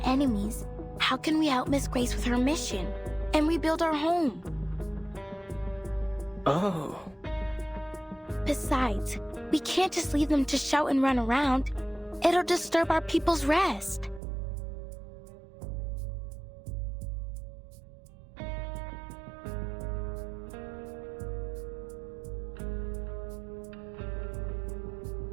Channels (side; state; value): left; drops out; at 14.2 s